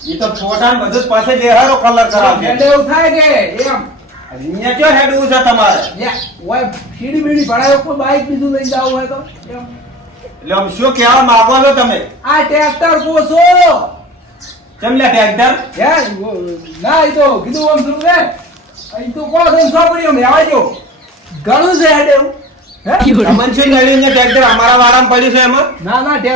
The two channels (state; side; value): normal; both; correlation 0.38